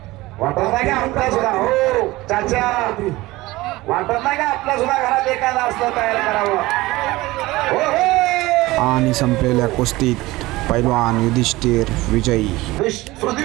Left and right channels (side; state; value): left; quieter; 19.4 dB